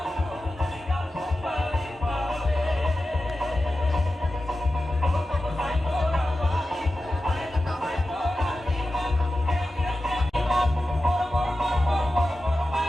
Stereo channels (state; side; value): normal; both; correlation 0.93